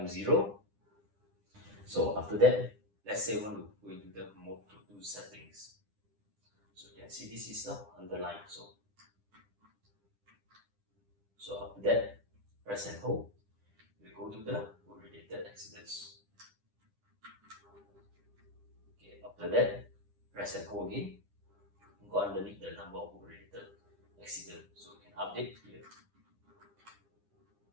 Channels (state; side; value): late; left; 10 ms